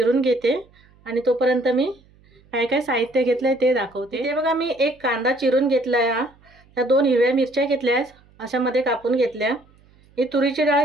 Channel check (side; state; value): right; noise; hum, 30 dB below the sound